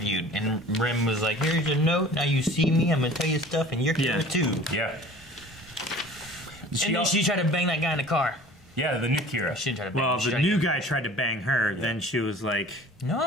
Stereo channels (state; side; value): normal; both; correlation 0.45